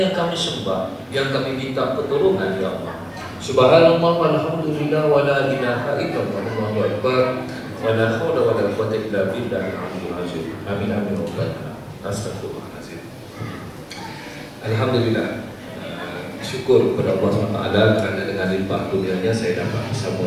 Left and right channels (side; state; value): both; identical; correlation 1.00